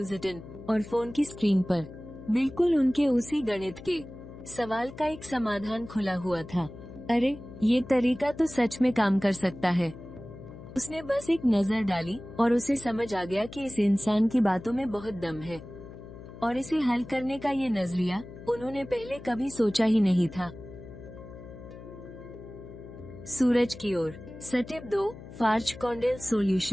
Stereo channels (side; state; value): left; noise; hum, 15 dB below the sound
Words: और फोन की स्क्रीन पर बिल्कुल उनके उसी गणित के सवाल का एक समाधान खुला हुआ था। अरे, ये तरीका तो सच में काम कर सकता है। उसने बस एक नजर डाली और उसे समझ आ गया कि इस इंसान की बातों में बहुत दम है, और इसे हल करने का ये नजरिया उन्होंने पहले कभी सोचा ही नहीं था। सूरज की ओर स्टेप 2 फार्च कॉन्डेल